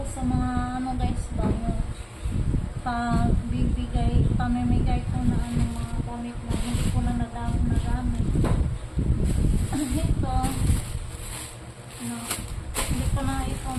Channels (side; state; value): both; identical; correlation 1.00